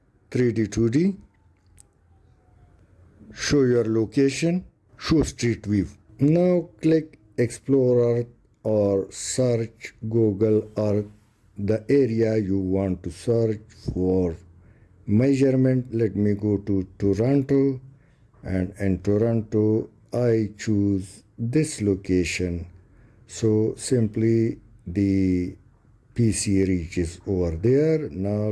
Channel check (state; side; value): identical; both; correlation 1.00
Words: 3D, 2D. Show your location, show street view. Now click Explore Earth or search Google Earth, the area you want to search for measurement. Let me go to Toronto, and in Toronto I choose this location. So simply the PC reaches over there. Now